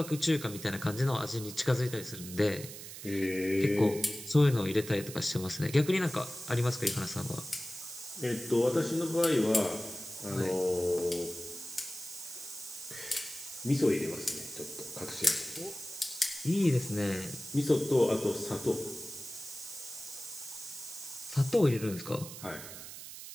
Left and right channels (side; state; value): right; noise; hiss, 12 dB below the sound